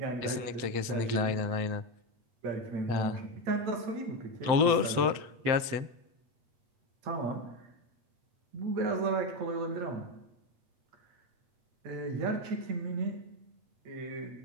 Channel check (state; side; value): late; left; 7.8 ms